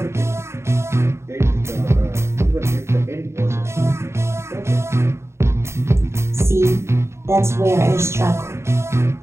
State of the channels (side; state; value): left; late; 0.13 ms